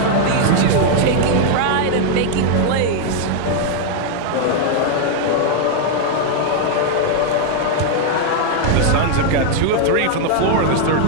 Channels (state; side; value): different; both; correlation 0.00